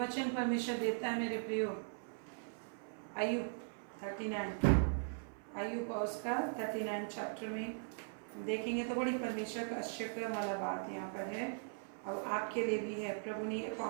वचन परमेश्वर देता है मेरे प्रियो, अय्यूब 39, अय्यूब और उसका 39 चैप्टर में देखेंगे तो बड़ी परमेश्वर का आश्चर्य वाला बात यहाँ पर है, और आपके लिए भी है। प्रभु ने ये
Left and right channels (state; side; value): silent; left; 51 dB below the other